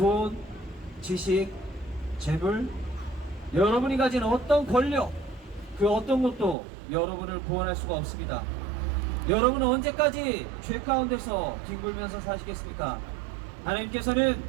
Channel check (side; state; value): left; drops out; at 6.6 s